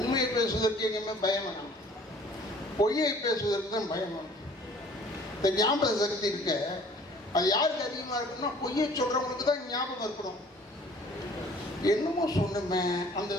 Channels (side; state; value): both; normal; correlation 0.52